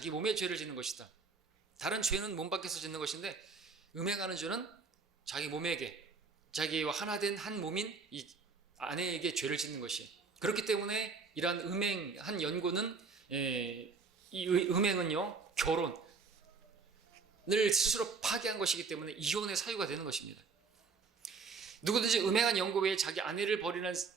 몸에 죄를 짓는 것이다. 다른 죄는 몸 밖에서 짓는 것인데 음행하는 죄는 자기 몸에게, 자기와 하나 된 한 몸인 이 아내에게 죄를 짓는 것이에요. 그렇기 때문에 이러한 음행한 연고는 이 음행은요, 결혼을 스스로 파괴한 것이기 때문에 이혼의 사유가 되는 것입니다. 누구든지 음행한 연고 외에 자기 아내를 버리는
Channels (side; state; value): left; quieter; 4.8 dB